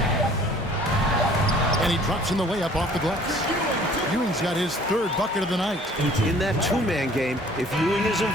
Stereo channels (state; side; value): normal; both; correlation 0.53